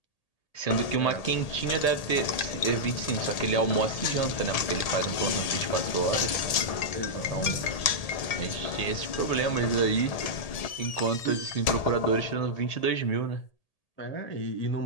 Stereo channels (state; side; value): late; right; 1.8 ms